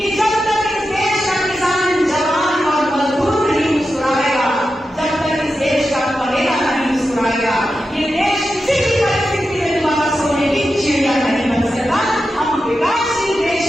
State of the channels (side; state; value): both; normal; correlation 0.90